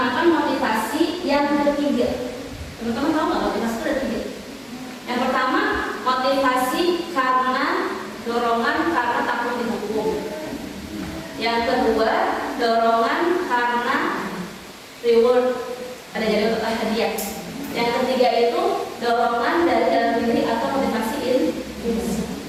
motivasi yang ketiga. Teman-teman tahu nggak motivasi itu ada tiga? Yang pertama, motivasi karena dorongan karena takut dihukum. Yang kedua, dorongan karena reward, ada jadi untuk hadiah. Yang ketiga itu dorongan dari dalam diri atau motivasi intrinsik.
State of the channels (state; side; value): identical; both; correlation 1.00